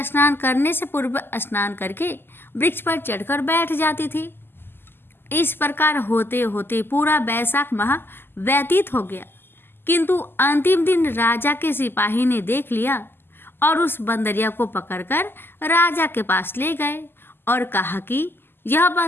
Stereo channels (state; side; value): late; right; 0.10 ms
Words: स्नान करने से पूर्व स्नान करके वृक्ष पर चढ़कर बैठ जाती थी। इस प्रकार होते होते पूरा बैसाख माह व्यतीत हो गया, किंतु अंतिम दिन राजा के सिपाही ने देख लिया और उस बंदरिया को पकड़कर राजा के पास ले गए और कहा कि यह